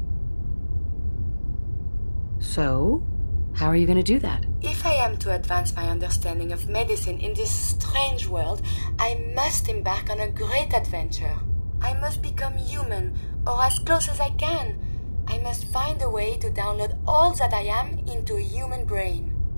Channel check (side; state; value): both; inverted; correlation -1.00